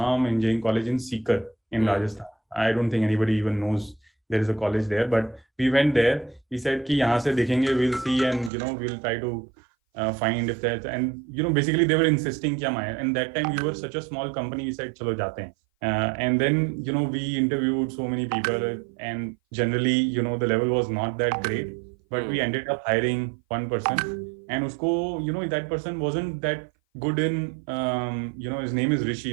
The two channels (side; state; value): left; drops out; at 8.5 s